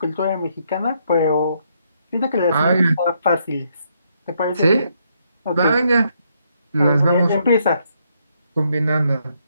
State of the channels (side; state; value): both; inverted; correlation -0.74